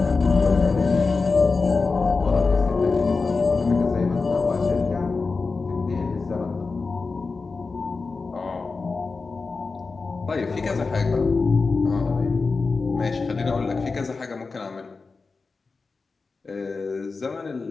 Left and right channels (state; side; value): quieter; right; 4.2 dB